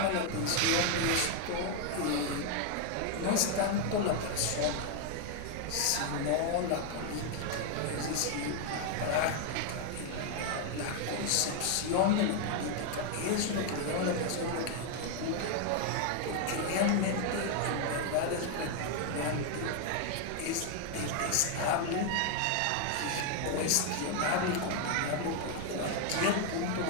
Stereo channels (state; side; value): different; both; correlation 0.00